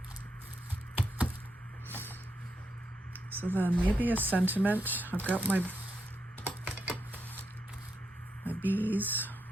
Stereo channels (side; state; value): both; normal; correlation 0.82